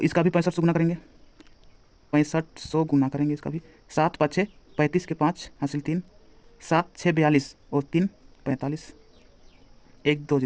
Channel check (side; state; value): both; identical; correlation 1.00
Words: इसका भी 6500 गुना करेंगे, 6500 गुना करेंगे इसका भी। 7 5 6 35 के 5 हासिल 3, 7 6 42 और 3 45, 1 2